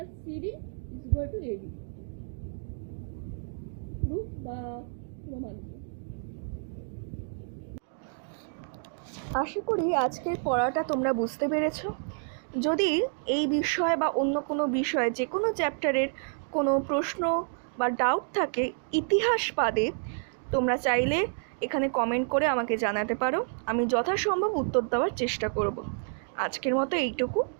CD is equal to AB. Proof বা প্রমাণ। আশা করি আজকের পড়াটা তোমরা বুঝতে পেরেছো। যদি এই বিষয় বা অন্য কোনো বিষয়ে, যে কোনো চ্যাপ্টারের কোনো প্রশ্ন বা ডাউট থাকে ইতিহাস বাদে, তোমরা চাইলে এখানে কমেন্ট করে আমাকে জানাতে পারো, আমি যথাসম্ভব উত্তর দেওয়ার চেষ্টা করব। আজকের মতো এইটুকু,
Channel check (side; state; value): left; silent; 58 dB below the other